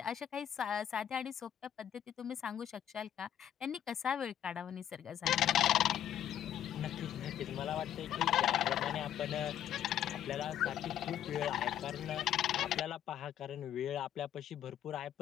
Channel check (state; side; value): quieter; right; 10.6 dB